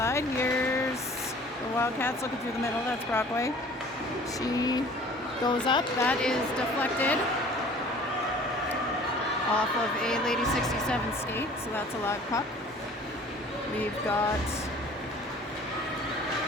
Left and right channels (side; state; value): both; normal; correlation 0.48